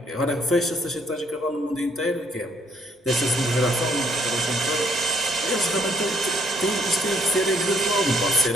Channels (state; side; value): normal; both; correlation 0.65